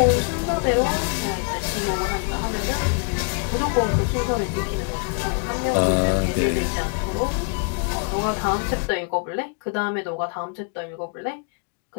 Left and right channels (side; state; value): right; quieter; 36.7 dB